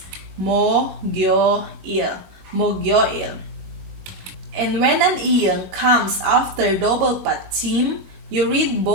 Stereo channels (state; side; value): late; left; 21 ms